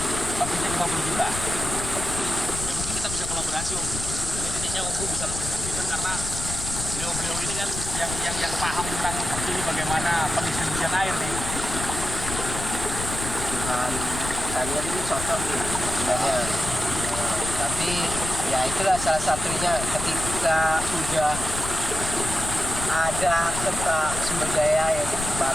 targetnya 50 juta. Ya mungkin kita bisa kolaborasi Om. Ini titiknya Om bisa lebih menentukan karena beliau ini kan yang paham tentang ini bagaimana pendistribusian air nih. kebutuhan kalian ini cocok nih sebenarnya. Tapi ya itulah salah satunya ketika udah ada sumber daya yang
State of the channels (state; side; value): noise; left; rumble, 7 dB below the sound